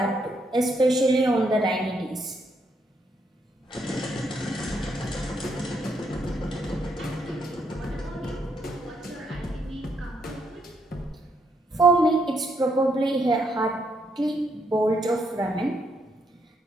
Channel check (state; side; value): normal; both; correlation 0.75